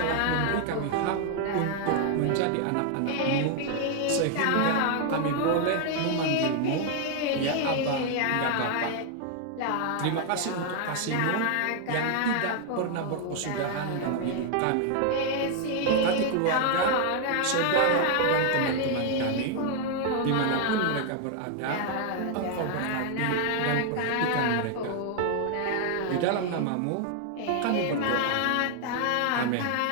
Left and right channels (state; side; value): different; both; correlation 0.00